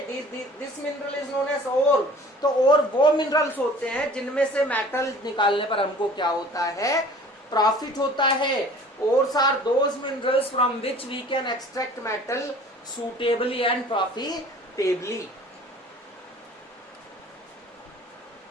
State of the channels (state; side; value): normal; both; correlation 0.47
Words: This mineral is known as ore. तो ओर वो मिनरल्स होते हैं जिनमें से मेटल निकालने पर हमको क्या होता है? प्रॉफिट होता है। Ores are those minerals from which we can extract metal suitably and profitably।